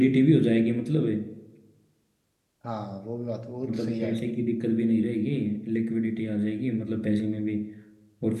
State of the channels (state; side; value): identical; both; correlation 1.00